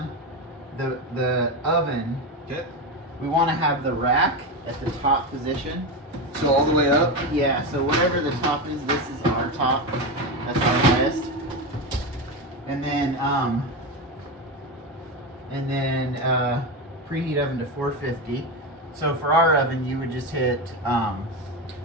the oven. Okay. We want to have the rack at the top position. So all the way up? Yeah, so whatever the top is, this is our top. That's our highest. And then preheat oven to 450. So for our oven, you would just hit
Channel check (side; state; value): both; normal; correlation 0.16